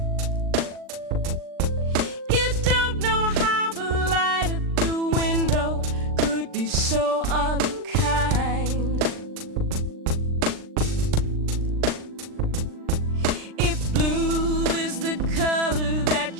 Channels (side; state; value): left; late; 39 ms